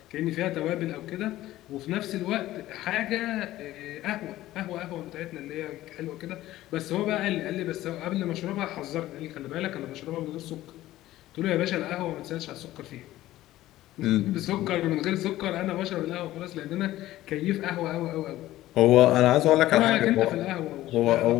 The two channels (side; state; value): right; quieter; 15.3 dB